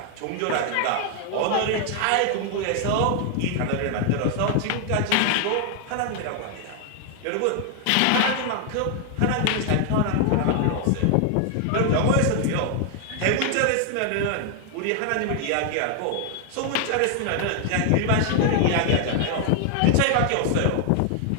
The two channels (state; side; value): different; both; correlation 0.00